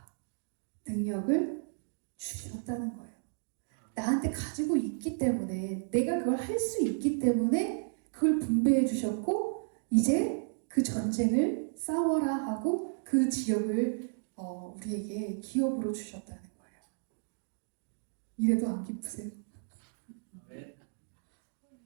능력을 주셨다는 거예요. 나한테 가지고 있기 때문에, 내가 그걸 할 수 있기 때문에 그걸 분배해 주셨고, 이제 그 전쟁을 싸워라 하고 그 지역을 우리에게 기업으로 주셨다는 거예요. 이래도 안 기쁘세요? 네.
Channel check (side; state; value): left; silent; digital silence